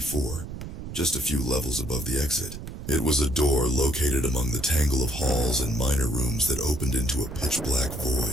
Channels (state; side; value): noise; right; rumble, 9 dB below the sound